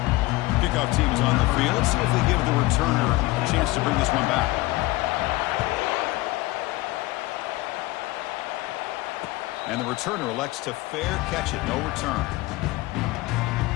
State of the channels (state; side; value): quieter; right; 20.0 dB